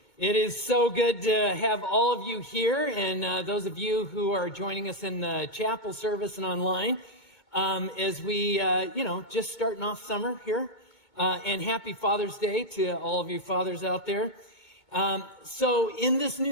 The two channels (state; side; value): late; right; 2.2 ms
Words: It is so good to have all of you here, and those of you who are joining us in the chapel service and online, as we, just starting off summer here. And happy Father's Day to all of you fathers out there. So in this